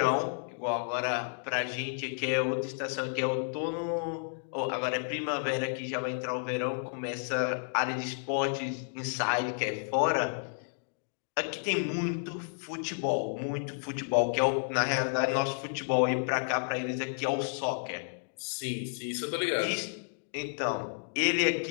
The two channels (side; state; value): right; silent; digital silence